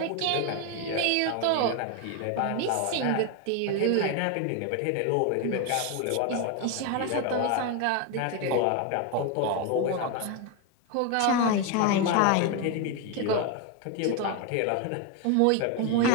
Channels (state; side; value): different; both; correlation 0.01